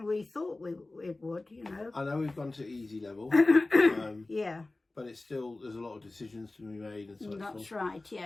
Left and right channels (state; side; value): quieter; right; 3.1 dB